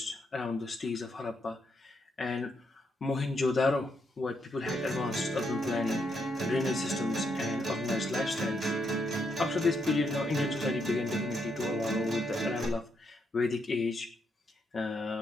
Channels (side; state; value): both; normal; correlation 0.78